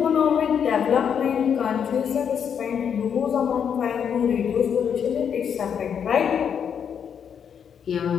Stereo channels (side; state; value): right; quieter; 7.7 dB